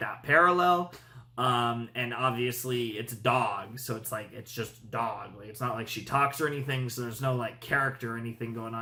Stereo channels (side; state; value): both; identical; correlation 1.00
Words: parallel. And obviously it's a dog, so it's just dog. Like, it's not like she talks or anything, so there's no like character or anything going